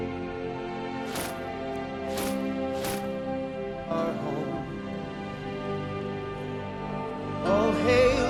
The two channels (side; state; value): both; identical; correlation 1.00